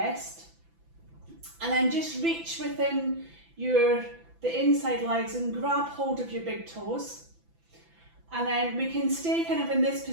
and then just reach within the inside legs and grab hold of your big toes. And then we can stay kind of in this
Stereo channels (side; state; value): left; late; 5.9 ms